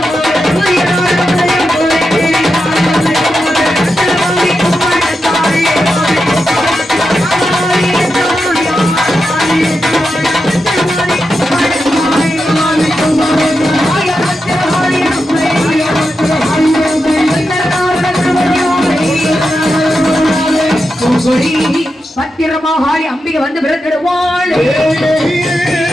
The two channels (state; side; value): normal; both; correlation 0.88